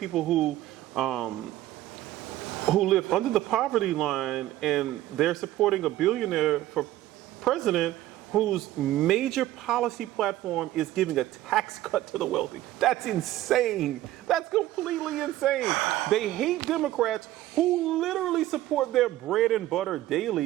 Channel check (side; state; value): left; quieter; 14.8 dB